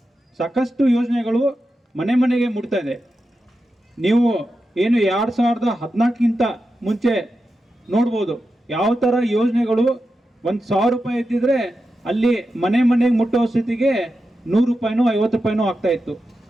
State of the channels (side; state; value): both; normal; correlation 0.90